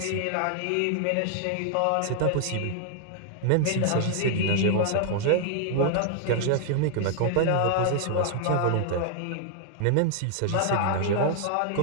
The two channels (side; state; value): both; different; correlation 0.00